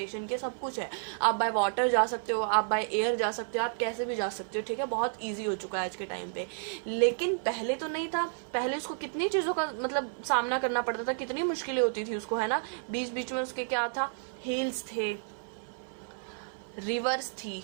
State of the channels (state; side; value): silent; left; 57 dB below the other